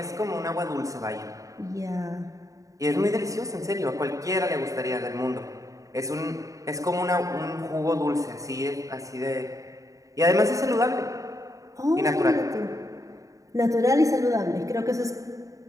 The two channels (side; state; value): left; late; 0.16 ms